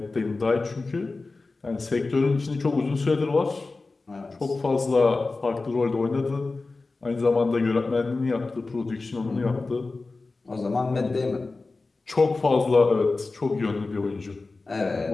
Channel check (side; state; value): right; quieter; 3.6 dB